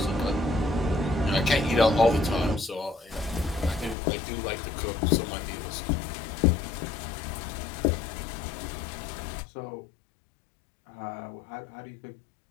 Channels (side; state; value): right; drops out; at 4.0 s